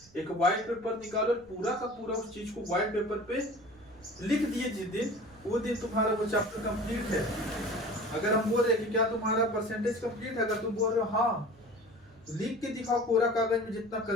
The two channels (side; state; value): right; noise; rumble, 27 dB below the sound